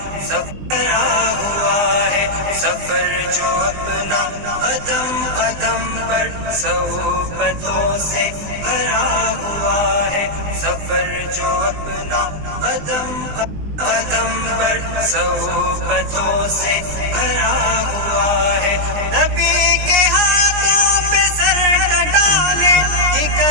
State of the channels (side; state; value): left; late; 20 ms